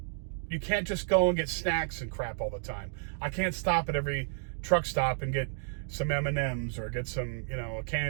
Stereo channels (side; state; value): left; silent; 57 dB below the other